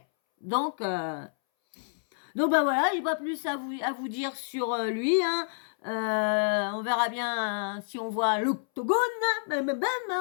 Donc bah voilà, j'ai pas plus à vous dire sur lui, hein. On verra bien si on voit l'octogone,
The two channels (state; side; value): silent; right; 59 dB below the other